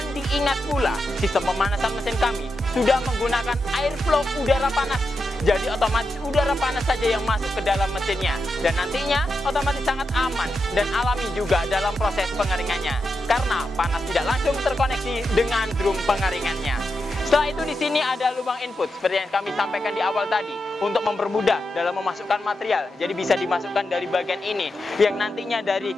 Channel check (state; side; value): normal; both; correlation 0.87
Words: diingat pula, sistem pemanasan mesin kami sudah menggunakan airflow udara panas. Jadi otomatis udara panas saja yang masuk ke dalam mesinnya. Dan nantinya otomatis sangat aman dan alami juga dalam proses pengeringannya. Karena panas tidak langsung terkoneksi dengan drum pengeringannya. Setelah itu di sini ada lubang input seperti yang kami sampaikan di awal tadi untuk mempermudah dalam memasukkan material. Jadi bisa dimasukkan dari bagian ini, yang nantinya dari